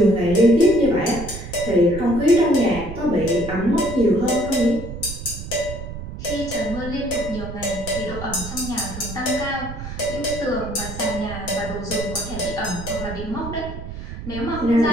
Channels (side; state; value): right; noise; rumble, 9 dB below the sound